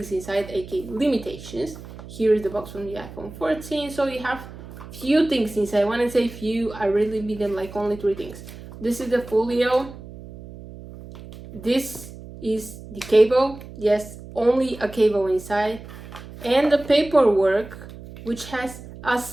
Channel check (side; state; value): right; noise; hum, 15 dB below the sound